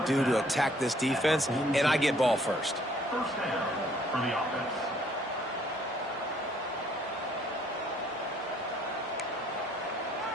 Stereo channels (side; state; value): both; normal; correlation 0.63